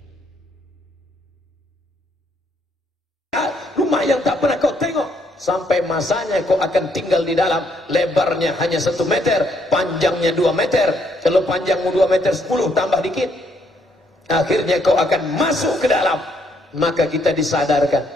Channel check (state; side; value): normal; both; correlation 0.71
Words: yang tak pernah kau tengok. Sampai masanya kau akan tinggal di dalam. Lebarnya hanya 1 meter, panjangnya 2 meter. Kalau panjangmu 2 meter 10 tambah dikit, akhirnya kau akan masuk ke dalam. Maka kita disadarkan.